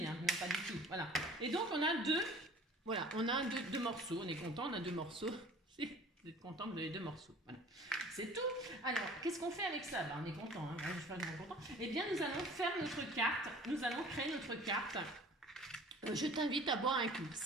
hein. Non, pas du tout. Voilà. Et donc, on a deux morceaux. On est content, on a deux morceaux. Vous êtes content, vous avez deux morceaux. Voilà. C'est tout. Alors, qu'est-ce qu'on fait avec ça? On est content. Hein. Je suis pas vraiment content. Eh bien, nous allons faire notre carte. Nous allons créer notre carte. Je t'invite à boire un coup.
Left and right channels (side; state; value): both; normal; correlation 0.47